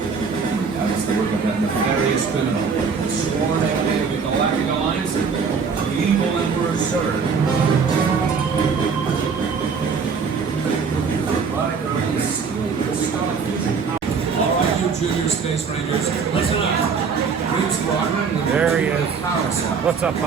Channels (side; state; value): left; quieter; 5.6 dB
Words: That is the work of that nefarious criminal, the sworn enemy of the Galactic Alliance, the evil Emperor Zurg. Alright, you junior space rangers, listen up. Green Squadron, there he is. What's up,